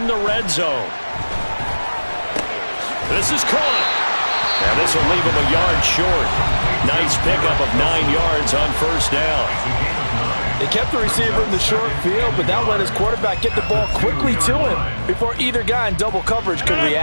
the red zone. This is caught. Now this will leave him a yard short. Nice pickup of 9 yards on first down. They kept the receiver in the short field, but that let his quarterback get the ball quickly to him before either guy in double coverage could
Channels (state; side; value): inverted; both; correlation -1.00